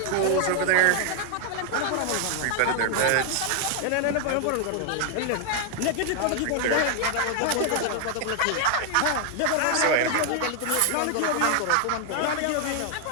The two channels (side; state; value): both; different; correlation 0.00